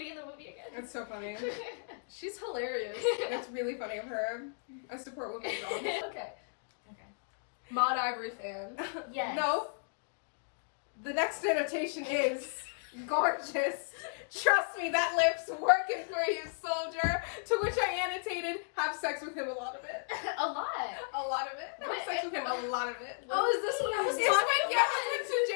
in the movie again? It's so funny. She's hilarious. It's really funny of her. I support women's wrongs. Okay. Maud Ivory fan. Yes. No. The next annotation is gorgeous. Trust me, that lip's working for you, soldier. To which I annotated, have sex with him a lot of it. A lot. A lot of it. Have sex with him a lot of it. Oh, is this what I was It's talking when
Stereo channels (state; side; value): silent; right; digital silence